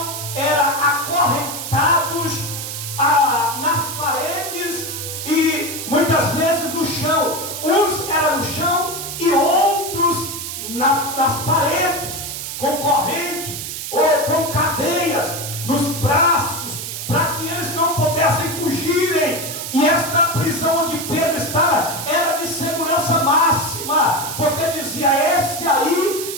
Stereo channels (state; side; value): noise; right; hiss, 6 dB below the sound